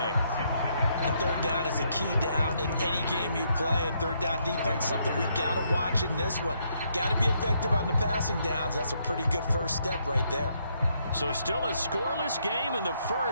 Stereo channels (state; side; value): inverted; both; correlation -0.74